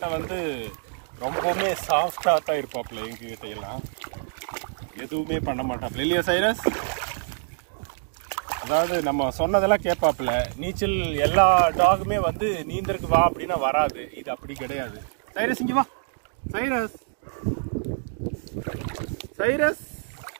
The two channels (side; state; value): left; silent; digital silence